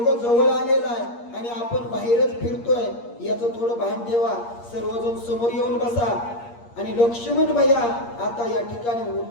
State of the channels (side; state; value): right; late; 8.5 ms